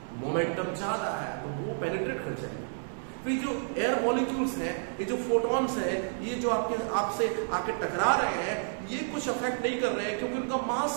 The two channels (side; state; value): left; silent; 58 dB below the other